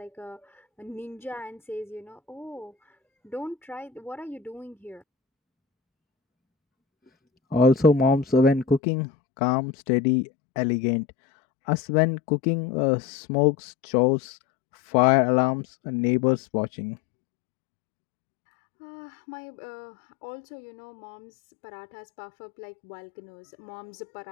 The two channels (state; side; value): drops out; right; at 8.8 s